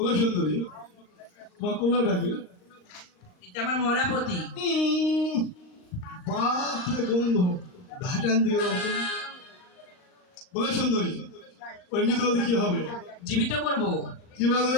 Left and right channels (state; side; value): late; right; 39 ms